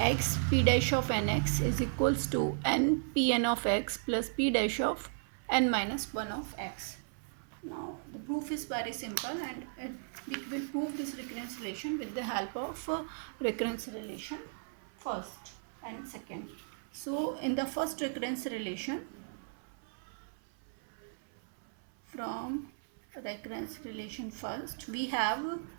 p dash of nx is equals to n pn of x plus p dash of n minus 1 of x. Now the proof is very simple, and we will prove this recurrence relation with the help of recurrence relation first and second. So in the first recurrence relation, from recurrence relation first, we have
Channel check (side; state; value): left; silent; 54 dB below the other